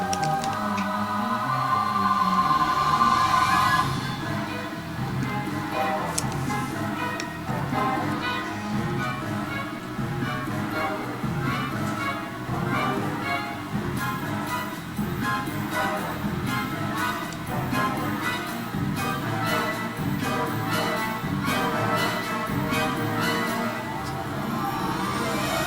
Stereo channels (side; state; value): both; identical; correlation 1.00